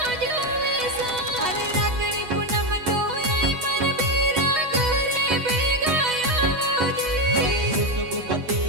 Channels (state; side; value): late; left; 8.1 ms